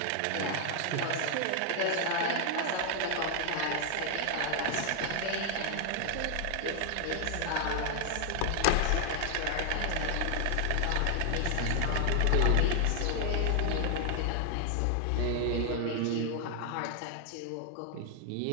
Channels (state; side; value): different; both; correlation 0.00